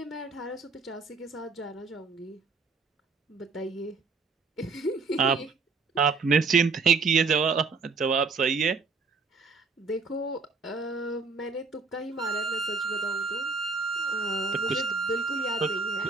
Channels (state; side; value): quieter; left; 4.4 dB